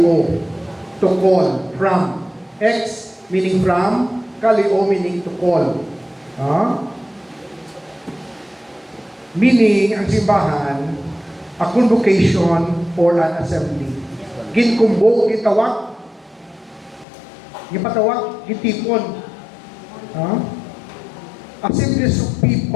To call. From. Ex meaning from. Kalio meaning to call. Meaning, ang simbahan, a convocation or an assembly. Ginkumbo, gitawag, gipatawag, gitipon. Assemblies of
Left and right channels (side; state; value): right; drops out; at 17.1 s